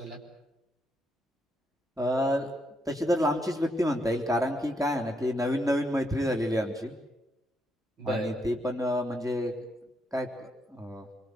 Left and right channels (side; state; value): both; normal; correlation 0.78